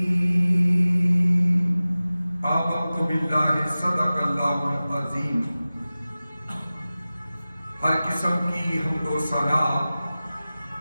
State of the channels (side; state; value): both; inverted; correlation -0.96